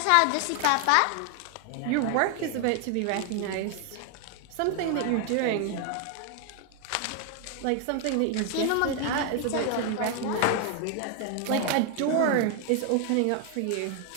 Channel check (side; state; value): both; different; correlation 0.00